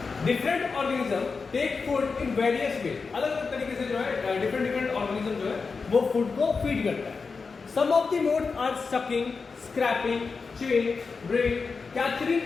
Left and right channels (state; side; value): quieter; right; 4.8 dB